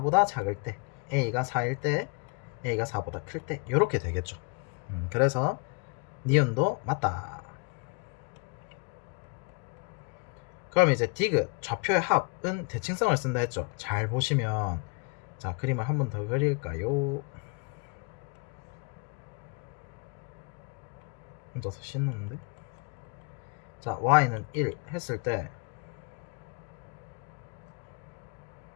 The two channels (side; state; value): right; quieter; 31.6 dB